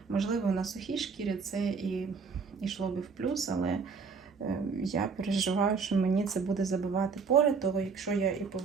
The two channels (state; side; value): quieter; left; 5.3 dB